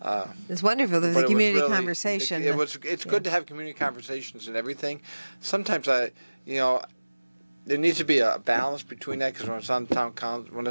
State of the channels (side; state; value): both; inverted; correlation -1.00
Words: It's wonderful. There's but a it was community really- conversation. It's good to have community conversations and everything. Sometimes there needs to be a balance between that, because when I was on the town council, when I